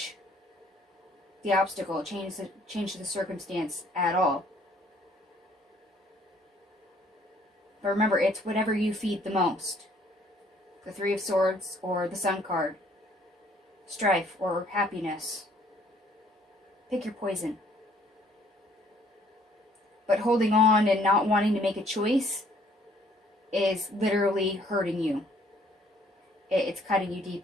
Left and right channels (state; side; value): normal; both; correlation 0.61